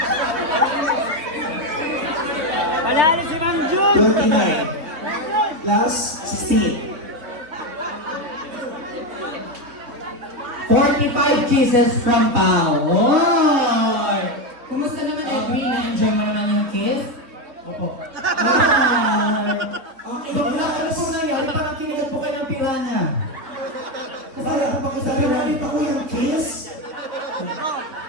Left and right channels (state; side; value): late; left; 3.8 ms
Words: Panalo si Ma'am Jun! 29. Last, 16. 45 kisses from Pao. Oy! Kumusta naman Edwin? Na-enjoy mo naman yung kiss? Opo. Ay! Ano po nangyari? Parang kinigat po kayo ng piranha. Kaya kapag sabi namin ako yung kiss,